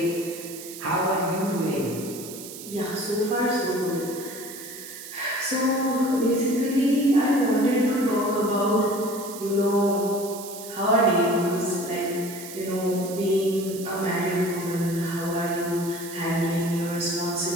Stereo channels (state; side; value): noise; right; hiss, 12 dB below the sound